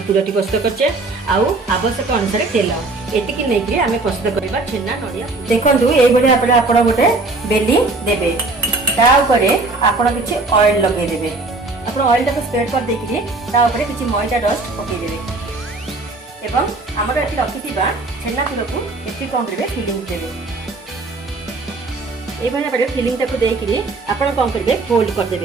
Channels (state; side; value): quieter; left; 3.3 dB